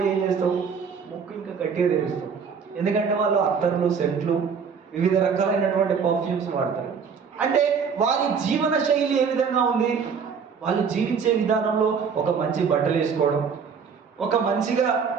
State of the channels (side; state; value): left; quieter; 6.2 dB